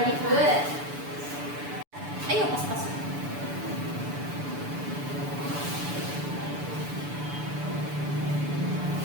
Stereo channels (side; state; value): left; late; 6.9 ms